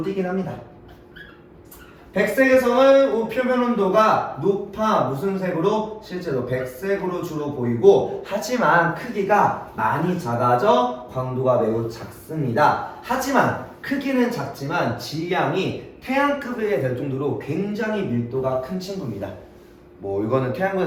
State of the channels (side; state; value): both; identical; correlation 1.00